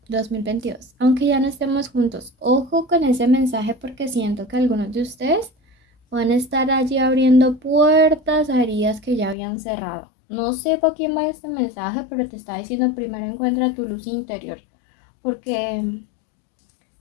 2022, aunque ya no estemos juntos. Ojo con ese mensaje porque siento que algunos de ustedes van a estar allí abriendo puertas a heridas que ya habían cerrado. No sé por quién va este mensaje, pero te está diciendo primero encuentra tu luz interior, porque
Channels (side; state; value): right; drops out; at 9.3 s